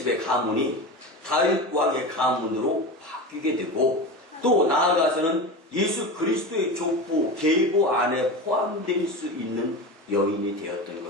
가문이 다윗 왕의 가문으로 바뀌게 되고 또 나아가서는 예수 그리스도의 족보, 계보 안에 포함될 수 있는 여인이 되었던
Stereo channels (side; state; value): both; normal; correlation 0.26